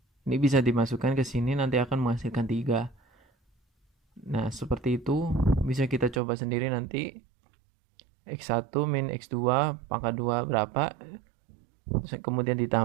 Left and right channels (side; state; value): left; drops out; at 6.2 s